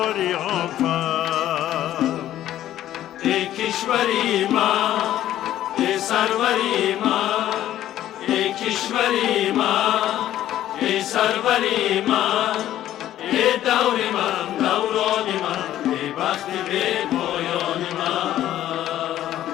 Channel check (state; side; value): quieter; right; 12.7 dB